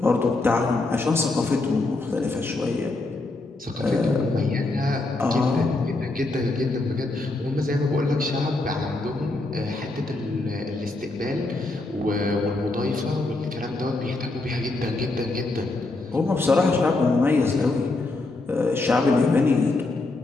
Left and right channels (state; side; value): quieter; right; 3.1 dB